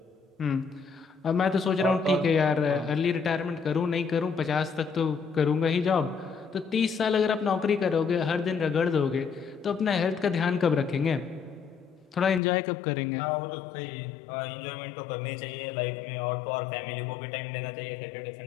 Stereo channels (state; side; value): drops out; right; at 12.4 s